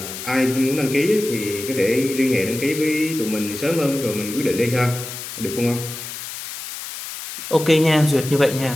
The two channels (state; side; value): noise; left; hiss, 9 dB below the sound